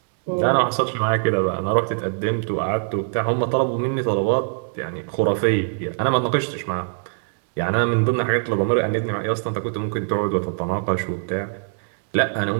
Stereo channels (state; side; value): silent; left; digital silence